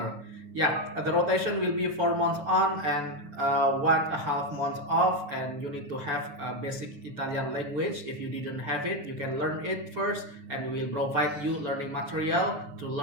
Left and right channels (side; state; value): left; late; 7.0 ms